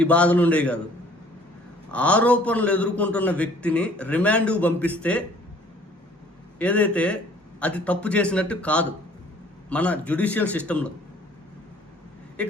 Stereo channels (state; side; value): normal; both; correlation 0.55